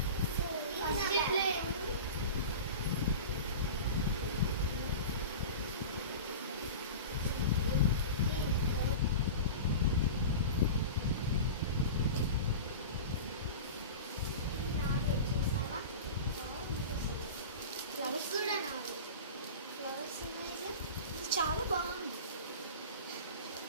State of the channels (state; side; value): inverted; both; correlation -0.31